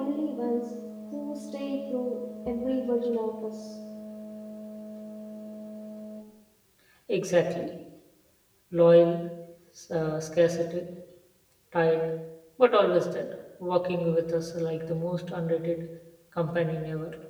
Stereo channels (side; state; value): both; identical; correlation 1.00